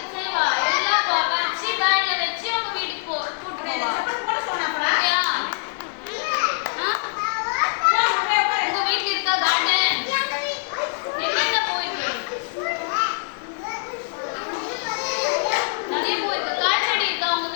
செய்வா? எல்லாம் பறிச்சு பேக்ல வச்சு அவங்க வீட்டுக்கு கூட்டு போவா. ஓகேவா? உங்க வீட்ல இருக்கா கார்டன்? என்னென்ன பூ இருக்கு? நிறைய பூ இருக்கு. காய் செடி இருக்கா உங்க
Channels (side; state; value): right; silent; digital silence